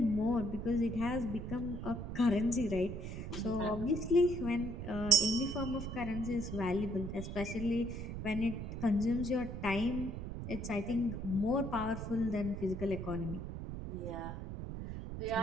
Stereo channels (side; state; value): right; noise; rumble, 6 dB below the sound